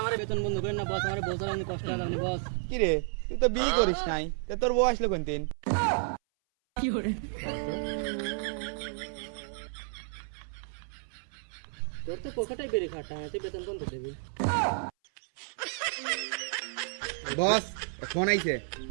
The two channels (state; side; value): silent; left; 57 dB below the other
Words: আমার বেতন বন্ধ করেন না বস, আমার বছর আমি কষ্ট হবে বস। কি রে, তুই তো বিয়ে করিস নাই, তা তোর বউ আসলো কোন দিন? কি করে তোর তো পকেটে বেরিয়ে খাটা, তুই বেতন বন্ধ দেবি? বস ফোন আইছে।